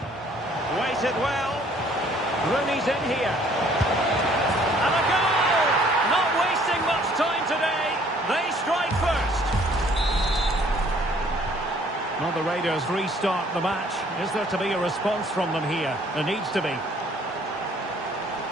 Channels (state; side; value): normal; both; correlation 0.59